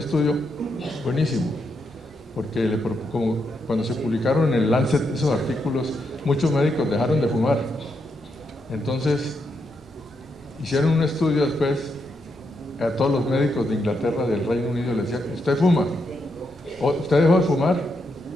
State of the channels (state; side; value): normal; both; correlation 0.81